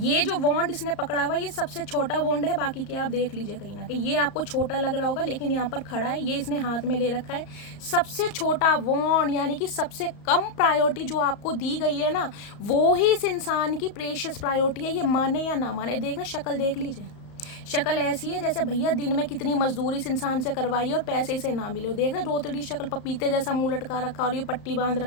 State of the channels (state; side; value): late; right; 34 ms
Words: जो वॉन्ड इसने पकड़ा हुआ, ये सबसे छोटा वॉन्ड है, बाकी के आप देख लीजिए कहीं ना कहीं। ये आपको छोटा लग रहा होगा, लेकिन यहाँ पर खड़ा है, ये इसने हाथ में ले रखा है, सबसे छोटा वॉन्ड, यानी कि सबसे कम प्रायोरिटी जो आपको दी गई है ना, वो ही इस इंसान की प्रेशियस प्रायोरिटी है। ये माने या ना माने, देखना शक्ल देख लीजिए, शक्ल ऐसी है जैसे भैया दिन में कितनी मजदूरी इस इंसान से करवाई और पैसे इसे ना मिले। देख रहे रोतड़ी शक्ल, पपीते जैसा मुँह लटका रखा, और ये पट्टी बांध